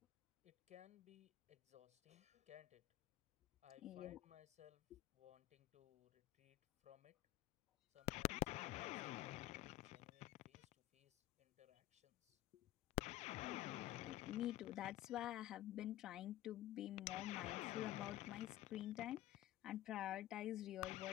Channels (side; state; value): right; quieter; 14.6 dB